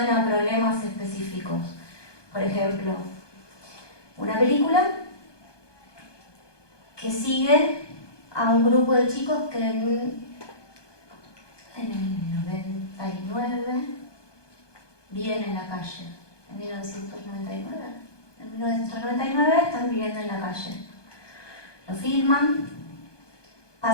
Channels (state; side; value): late; right; 1.2 ms